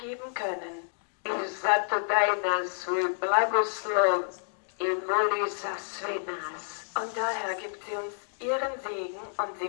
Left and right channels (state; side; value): silent; right; digital silence